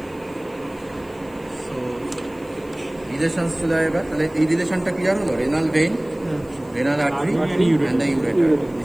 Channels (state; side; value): noise; left; hiss, 28 dB below the sound